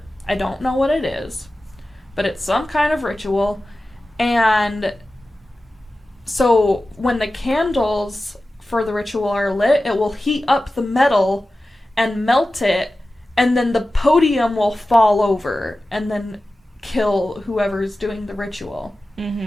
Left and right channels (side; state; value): both; normal; correlation 0.95